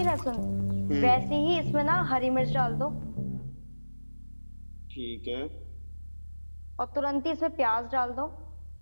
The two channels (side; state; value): both; inverted; correlation -1.00